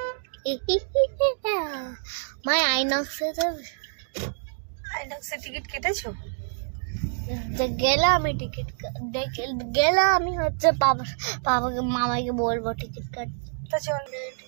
আইনক্সে টিকিট কেটেছো? গেলে আমি টিকিট গেলে আমি হচ্ছে বাবাকে মামাকে বলবো টিকিট কাটতে। চল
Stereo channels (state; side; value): silent; left; digital silence